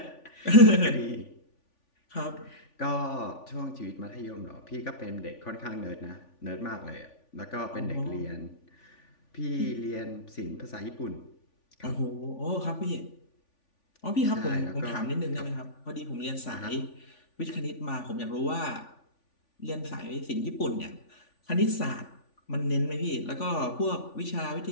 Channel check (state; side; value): late; right; 3.5 ms